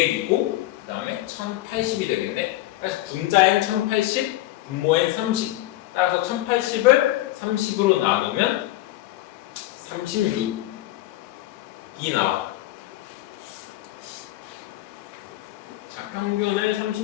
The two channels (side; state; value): right; quieter; 16.1 dB